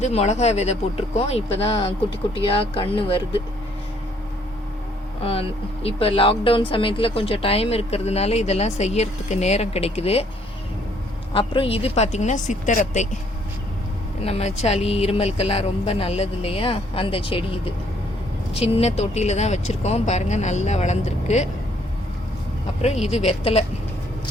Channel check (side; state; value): both; normal; correlation 0.65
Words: மிளகா விதை போட்டிருக்கோம். இப்போ தான் குட்டி குட்டியாக கன்று வருது. இப்போ லாக்டவுன் சமயத்தில் கொஞ்சம் டைம் இருக்கிறதுனால இதெல்லாம் செய்யறதுக்கு நேரம் கிடைக்குது. அப்புறம் இது பார்த்திங்கன்னா சித்தரத்தை, நம்ம சளி இருமலுக்கெல்லாம் ரொம்ப நல்லது இல்லையா, அந்த செடி. இது சின்ன தொட்டியில் தான் வச்சுருக்கோம் பாருங்கள், நல்லா வளர்ந்துருக்கு. அப்புறம் இது